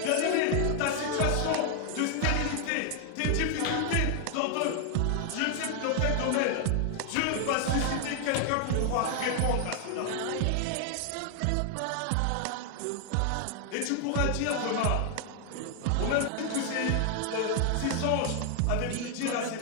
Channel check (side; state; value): both; different; correlation 0.00